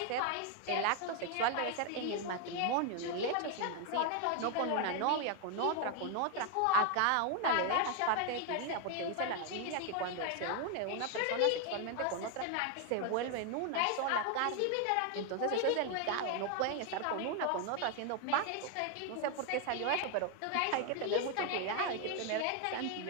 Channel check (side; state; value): both; different; correlation 0.00